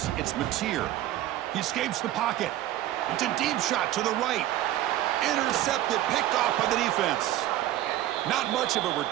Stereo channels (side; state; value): left; quieter; 13.9 dB